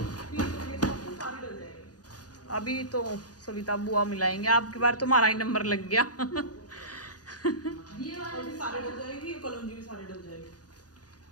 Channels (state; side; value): late; right; 0.68 ms